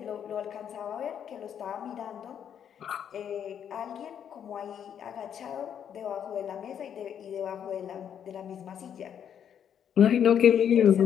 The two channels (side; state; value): right; quieter; 8.8 dB